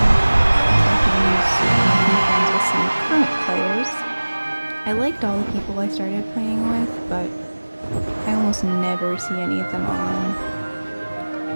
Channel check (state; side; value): inverted; both; correlation -1.00